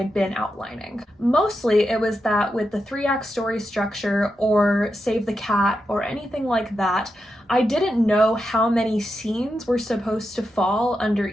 been outlining. Mostly it was that with the 3-act story structure or Save the Cat or anything like that, I didn't know how many scenes were supposed to fall under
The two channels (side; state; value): both; normal; correlation 0.87